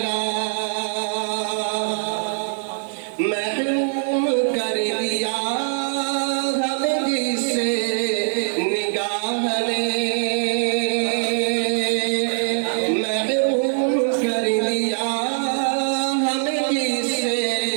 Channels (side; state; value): left; silent; 64 dB below the other